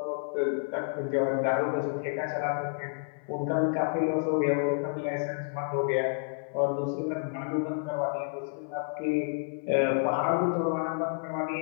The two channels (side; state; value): right; silent; 58 dB below the other